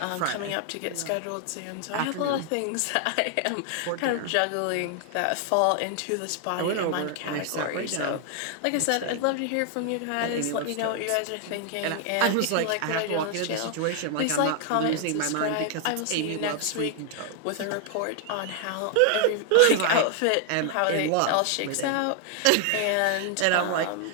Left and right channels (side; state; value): both; different; correlation 0.00